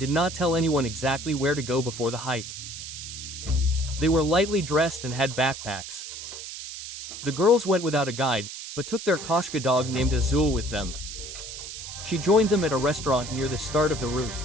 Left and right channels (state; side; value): noise; right; hiss, 10 dB below the sound